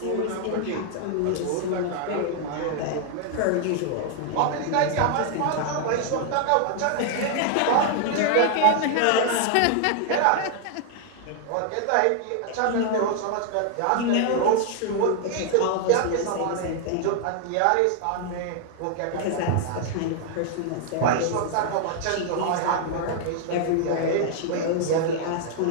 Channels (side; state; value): both; different; correlation 0.00